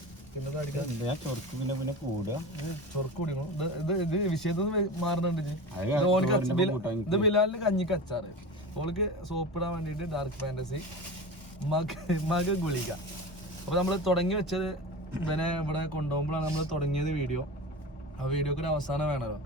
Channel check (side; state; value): both; normal; correlation 0.30